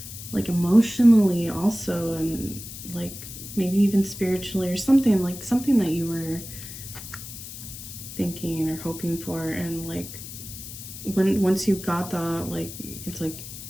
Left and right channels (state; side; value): noise; left; hiss, 12 dB below the sound